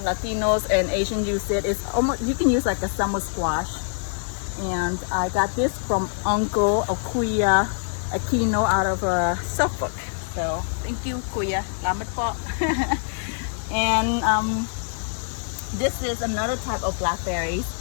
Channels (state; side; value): silent; right; 62 dB below the other